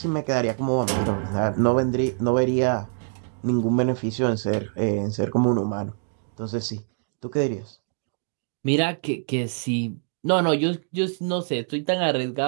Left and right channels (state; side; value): silent; left; digital silence